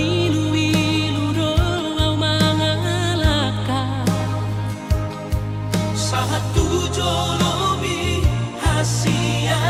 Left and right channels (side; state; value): both; identical; correlation 1.00